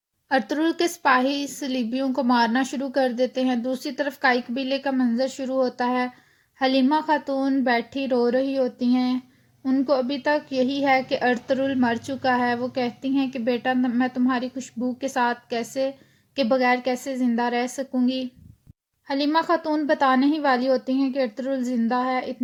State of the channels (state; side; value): identical; both; correlation 1.00